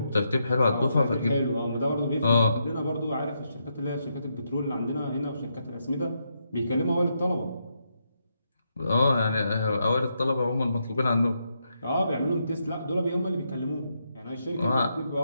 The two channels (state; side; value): inverted; both; correlation -0.81